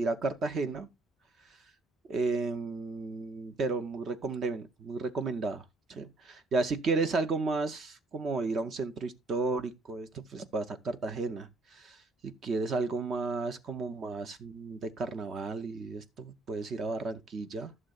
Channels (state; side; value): quieter; left; 3.2 dB